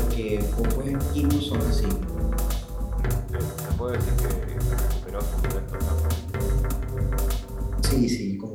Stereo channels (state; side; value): identical; both; correlation 1.00